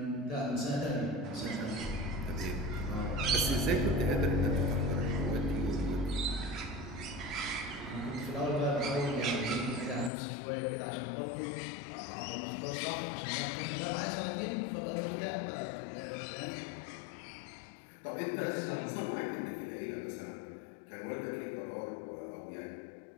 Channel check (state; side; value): drops out; right; at 10.1 s